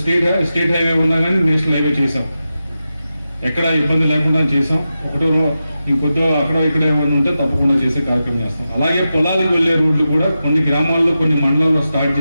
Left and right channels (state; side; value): inverted; both; correlation -0.91